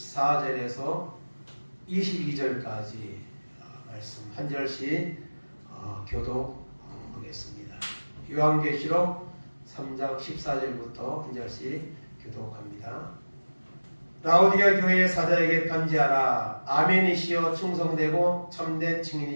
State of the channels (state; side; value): inverted; both; correlation -1.00